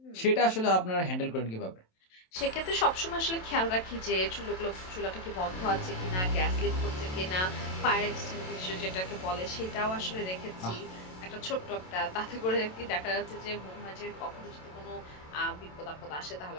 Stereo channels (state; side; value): late; right; 27 ms